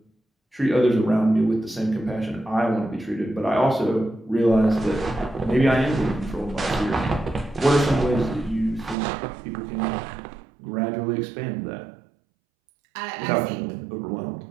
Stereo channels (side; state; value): left; drops out; at 9.0 s